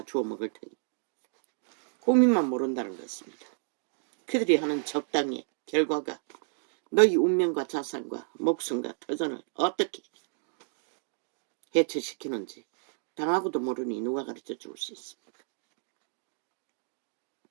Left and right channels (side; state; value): left; silent; digital silence